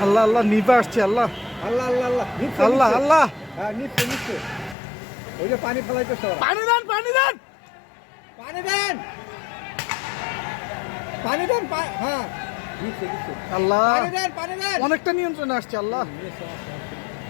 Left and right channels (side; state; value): right; drops out; at 4.8 s